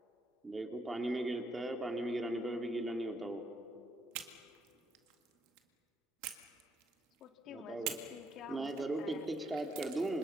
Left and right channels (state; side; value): normal; both; correlation 0.75